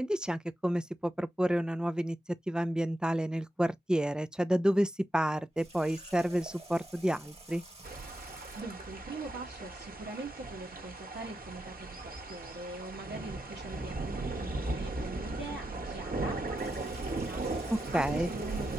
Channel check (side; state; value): both; normal; correlation 0.88